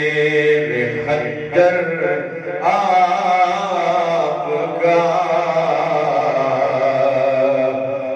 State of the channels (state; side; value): identical; both; correlation 1.00